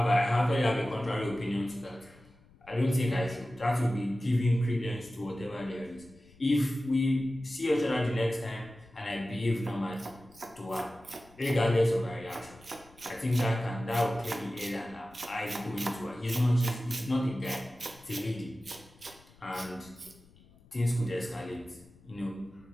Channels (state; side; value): noise; left; rumble, 26 dB below the sound